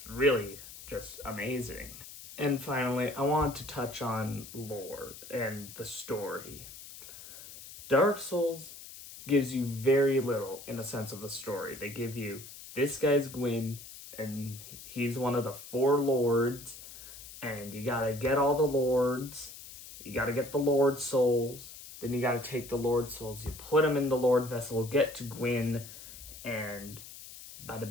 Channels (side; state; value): left; noise; hiss, 15 dB below the sound